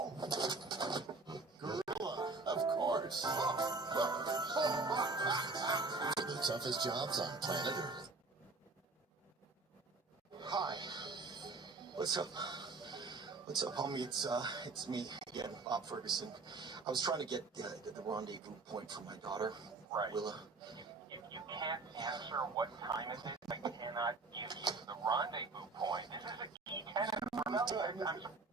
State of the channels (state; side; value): quieter; left; 3.7 dB